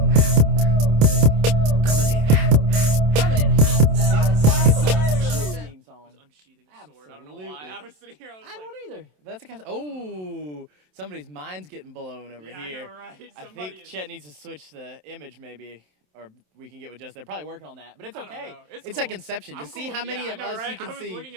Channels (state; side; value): late; left; 27 ms